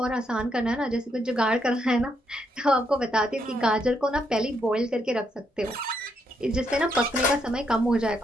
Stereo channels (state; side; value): normal; both; correlation 0.77